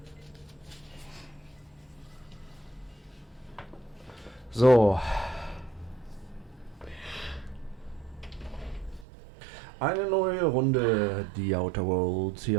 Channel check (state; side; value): drops out; left; at 9.1 s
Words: So. Eine neue Runde, die Outer Worlds